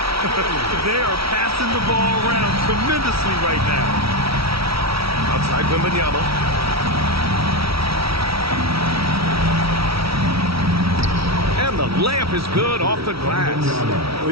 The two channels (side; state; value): left; late; 0.75 ms